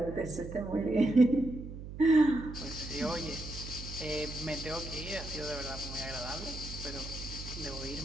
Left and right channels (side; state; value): right; noise; hum, 10 dB below the sound